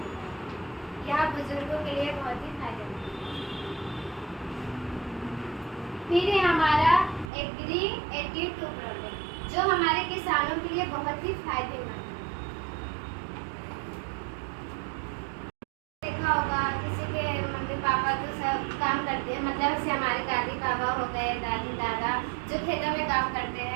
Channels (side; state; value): left; drops out; at 7.3 s